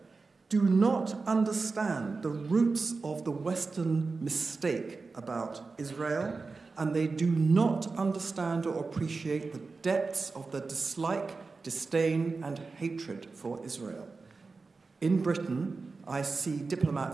do not understand the roots of the Western mistake about Israel, and they do not understand or appreciate the depths of the dislike, disdain, and hatred for Israel. In Britain, I see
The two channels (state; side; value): quieter; left; 4.1 dB